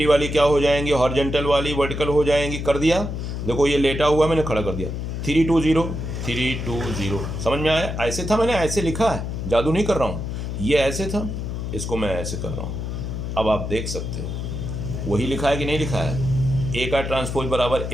वाली क्या हो जाएंगी, हॉरिजॉन्टल वाली वर्टिकल हो जाएंगी, कर दिया। देखो ये लेटा हुआ मैंने खड़ा कर दिया, 3 2 0 3 2 0। समझ में आया, ऐसे था, मैंने ऐसे लिखा है, जादू नहीं कर रहा हूँ, ये ऐसे था, इसको मैं ऐसे कर रहा हूँ। अब आप देख सकते हो वही लिखा है कि नहीं लिखा है, ए का ट्रांसपोज बराबर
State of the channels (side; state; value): left; noise; hum, 4 dB below the sound